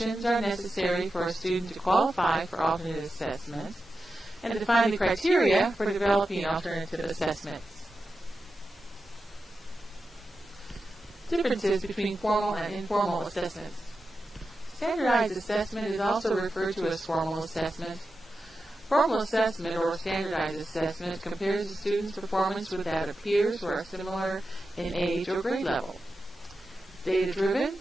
are necessary for a student to qualify for alternate assessment, and define the criteria for developing alternative assessments. Differences between formal and informal assessments. Standardized assessment is also referred to as formal assessment. Formal assessment, or standardized assessment, compares a student's performance with that of peers who are similar in age or grade level. Data-driven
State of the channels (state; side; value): normal; both; correlation 0.91